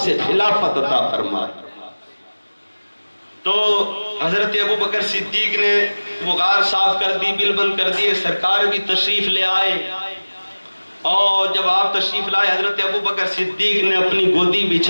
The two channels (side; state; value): both; inverted; correlation -1.00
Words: خلافت عطا فرمائی۔ تو حضرت ابو بکر صدیق نے وہ غار صاف کر دی، بل بند کر دیے، سرکار بھی تشریف لے آئے، اور جب آپ تشریف لائے حضرت ابو بکر صدیق نے اپنی گودی